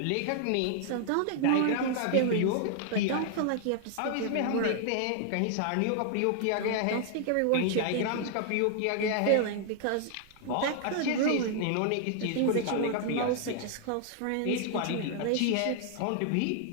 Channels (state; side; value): different; both; correlation -0.01